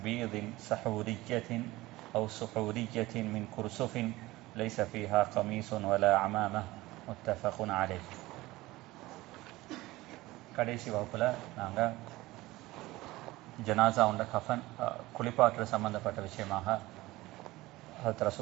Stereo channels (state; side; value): quieter; left; 19.0 dB